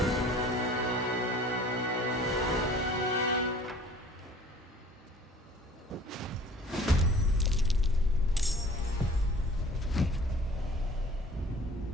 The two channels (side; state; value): both; normal; correlation 0.48